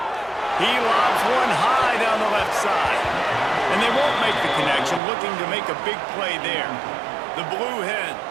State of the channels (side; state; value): left; drops out; at 5.0 s